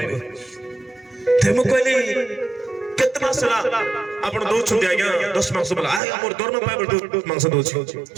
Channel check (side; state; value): left; drops out; at 6.0 s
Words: ते मो कहले केतना सला आपण दो छुंडी आगे 10 मांस बोला आ हमर दरमा पाइबल 10 मांस दोछि